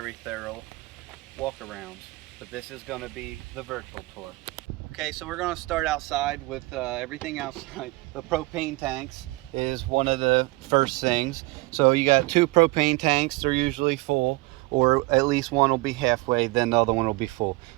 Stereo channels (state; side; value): quieter; left; 22.8 dB